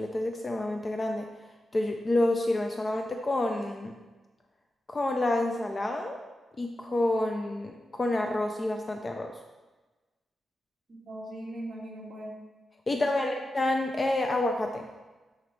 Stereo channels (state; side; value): normal; both; correlation 0.91